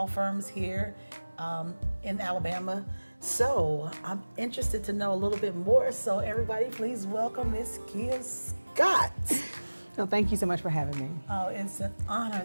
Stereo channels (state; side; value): inverted; both; correlation -1.00